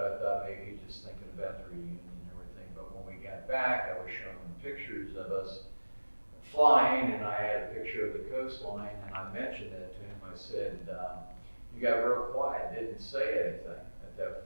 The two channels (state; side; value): inverted; both; correlation -1.00